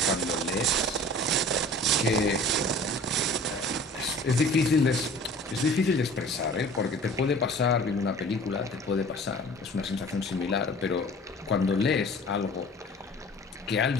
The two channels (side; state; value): both; normal; correlation 0.45